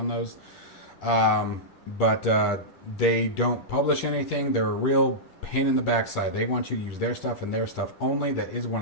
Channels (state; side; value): late; right; 10 ms